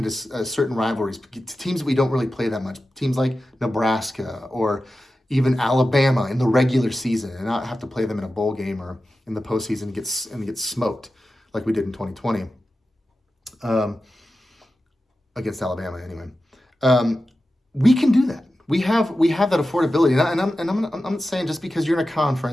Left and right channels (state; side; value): normal; both; correlation 0.93